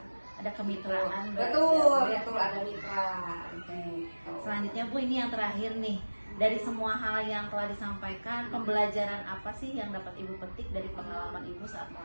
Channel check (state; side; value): inverted; both; correlation -1.00